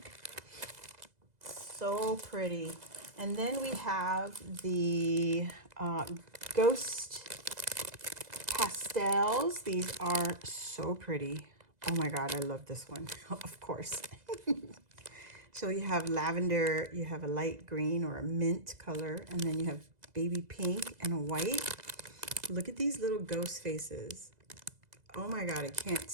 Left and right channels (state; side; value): late; left; 2.0 ms